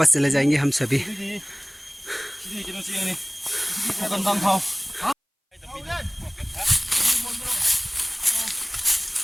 चले जाएंगे हम सभी।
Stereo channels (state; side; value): identical; both; correlation 1.00